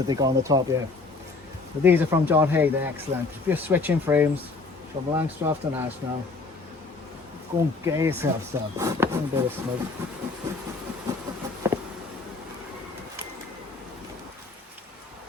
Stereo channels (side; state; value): right; quieter; 3.8 dB